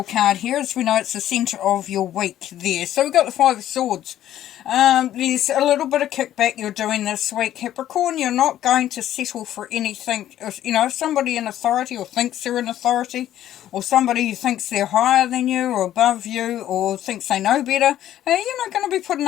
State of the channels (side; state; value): right; quieter; 12.2 dB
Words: card here. As we know, it's the centre of your week there. So we've got the Five of Swords. There's a little bit of kickback you're doing this week, Capricorn. You're not going to settle for anything. If somebody in authority or thinks they're in authority, or somebody who thinks they're higher than you or above you or thinks they know better, you're not going to be